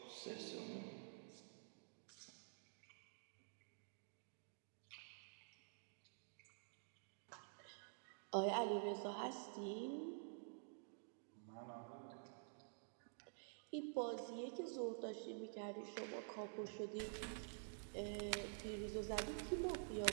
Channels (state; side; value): silent; left; digital silence